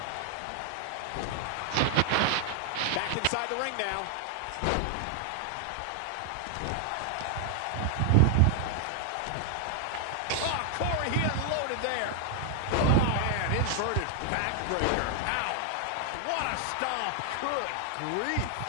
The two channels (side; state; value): both; different; correlation 0.00